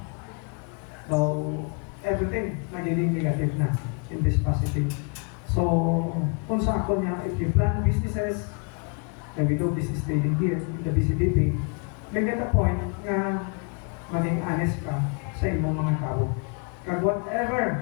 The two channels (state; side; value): quieter; right; 35.3 dB